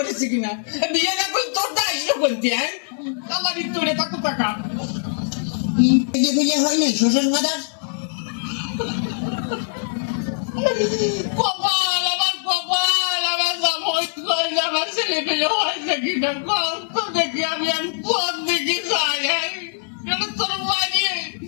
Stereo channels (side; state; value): right; silent; digital silence